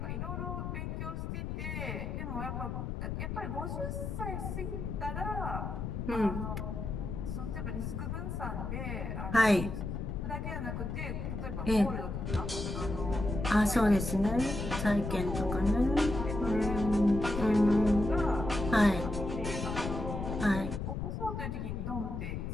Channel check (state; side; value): noise; left; rumble, 4 dB below the sound